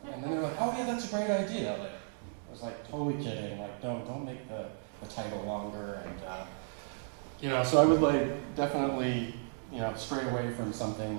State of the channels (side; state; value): left; silent; digital silence